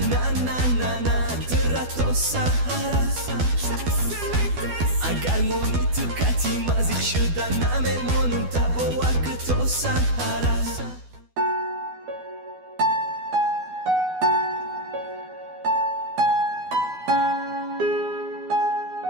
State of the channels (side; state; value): left; late; 12 ms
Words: na na na na Terato sahara Agar moni tukati mazik shuda Namemon boar ke to sahara